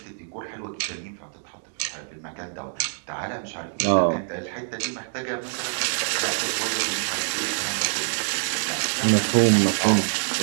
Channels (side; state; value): left; silent; digital silence